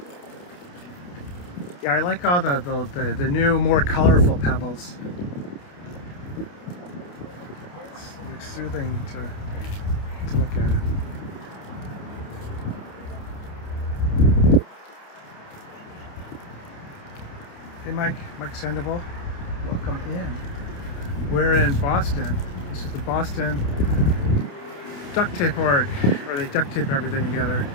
Yeah, I like all the new, more colorful pebbles. It's like soothing to look at it. Hey Mike Sandoval, welcome in. We're in Boston. This is the Boston duct tape org, where they duct tape everything together.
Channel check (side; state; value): right; late; 28 ms